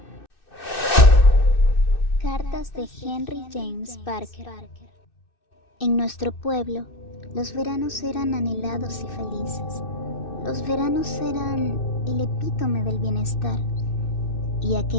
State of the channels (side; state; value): right; late; 2.6 ms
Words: Cartas de Henry James Parker. En nuestro pueblo, los veranos eran anhelados y felices. Los veranos eran el epítome del bienestar, y